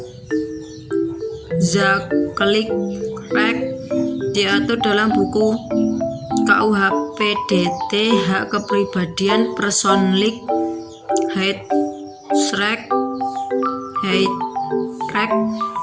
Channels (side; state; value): both; identical; correlation 1.00